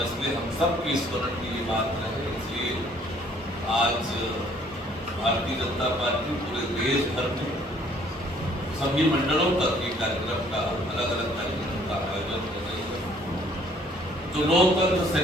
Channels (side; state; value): both; normal; correlation 0.60